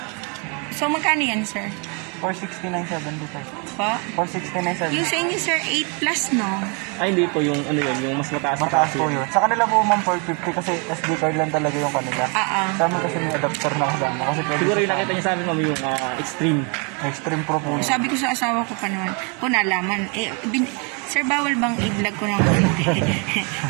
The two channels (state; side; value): quieter; left; 34.7 dB